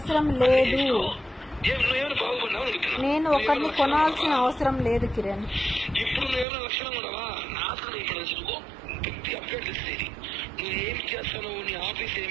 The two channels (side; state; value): left; drops out; at 6.5 s